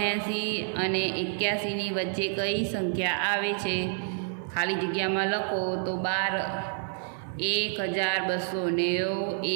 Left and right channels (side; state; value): left; silent; 58 dB below the other